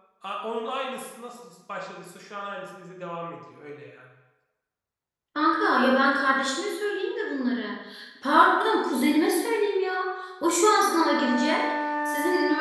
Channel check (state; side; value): identical; both; correlation 1.00